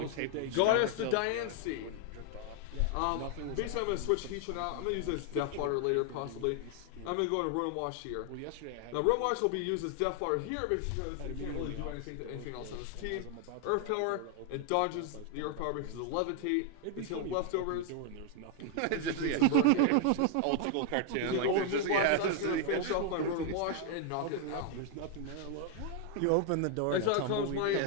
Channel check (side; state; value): both; different; correlation 0.00